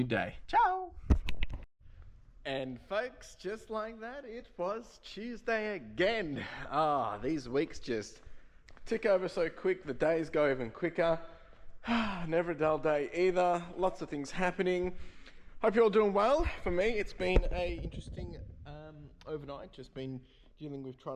day. Ciao. And folks, just like that, it was Tuesday again. These weeks just tick over so quick. The days go even quicker. Never a dull day either. Lots of things happening. Hope you're all doing well. For me, it's been a interesting overnight. Just been dealing with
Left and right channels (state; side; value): identical; both; correlation 1.00